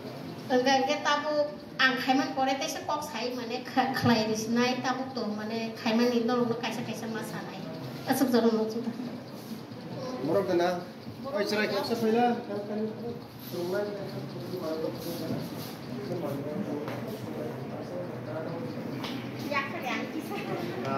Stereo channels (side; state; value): both; identical; correlation 1.00